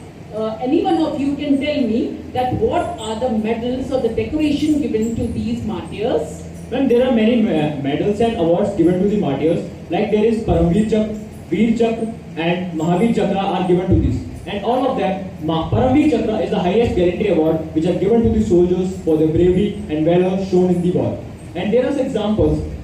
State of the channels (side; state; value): both; identical; correlation 1.00